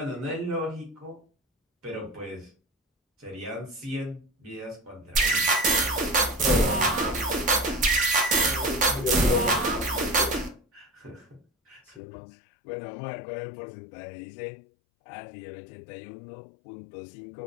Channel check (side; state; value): right; drops out; at 12.0 s